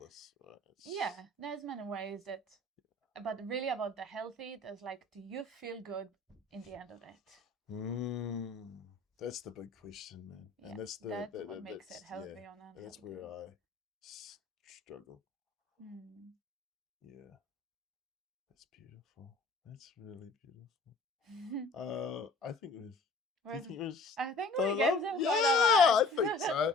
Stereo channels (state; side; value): quieter; right; 3.0 dB